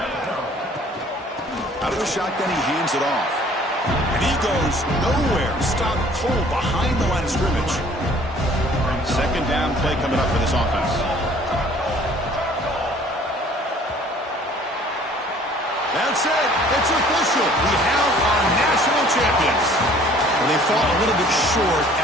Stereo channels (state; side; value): normal; both; correlation 0.54